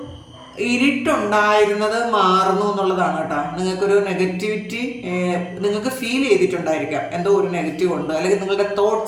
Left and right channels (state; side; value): identical; both; correlation 1.00